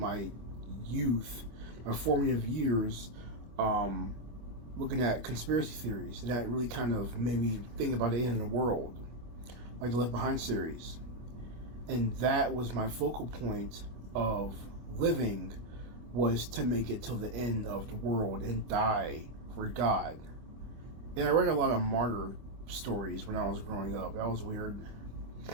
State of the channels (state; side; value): late; left; 25 ms